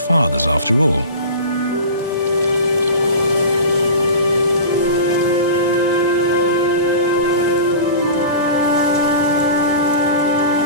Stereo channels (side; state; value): both; inverted; correlation -0.34